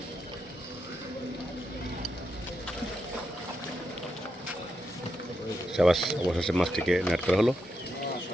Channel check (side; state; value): both; normal; correlation 0.84